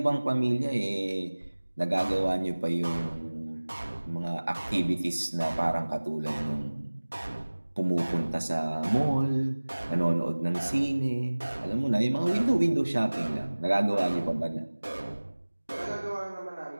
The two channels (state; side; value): inverted; both; correlation -1.00